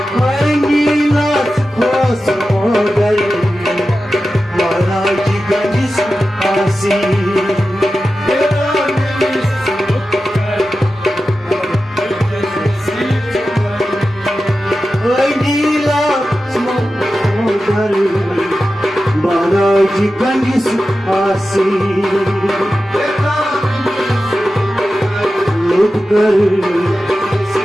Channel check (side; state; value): both; normal; correlation 0.93